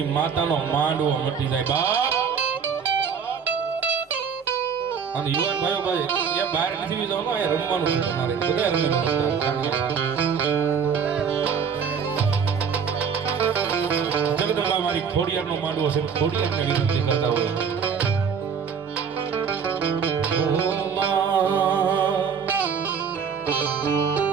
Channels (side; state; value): left; quieter; 6.6 dB